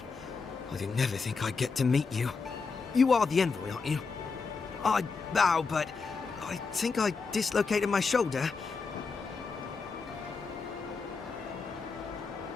I didn't never think I'd get to meet you. You are the envoy, aren't you? I bow, but I think I dislocated my shoulder.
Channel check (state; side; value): quieter; right; 4.8 dB